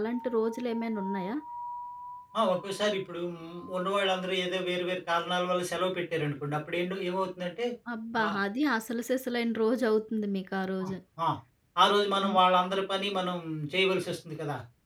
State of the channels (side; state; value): both; identical; correlation 1.00